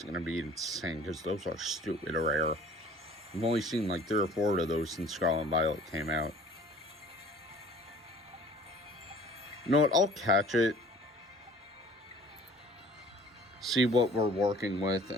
going to be insane, because those are stupid rare. I've only seen like 3 or 4 of those since Scarlet and Violet came out. You know what, I'll catch it, see what we're working with,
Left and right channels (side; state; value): both; normal; correlation 0.49